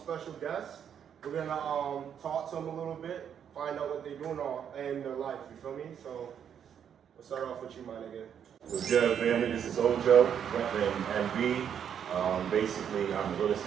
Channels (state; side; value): quieter; left; 8.5 dB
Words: guests. We're gonna talk to them a little bit, find out what they're doing in their life, you feel me? So, we'll start off with you, my nigga. What's good, family? This is Ojo, repping MB. Basically, I'm a real